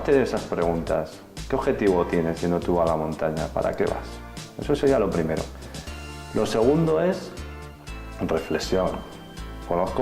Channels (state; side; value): identical; both; correlation 1.00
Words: esas preguntas. ¿Qué objetivo tienes yendo tú a la montaña? ¿Para qué vas? Eso sería lo primero. Lo segundo es reflexión.